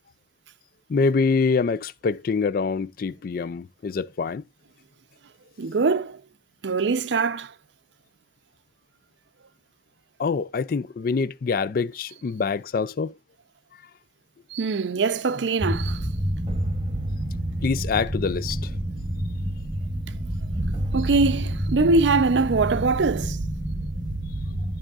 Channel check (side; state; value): both; normal; correlation 0.30